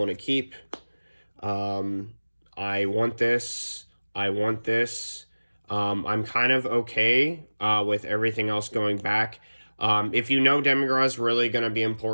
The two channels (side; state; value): both; inverted; correlation -1.00